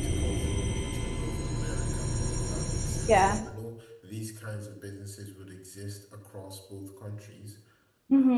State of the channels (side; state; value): both; identical; correlation 1.00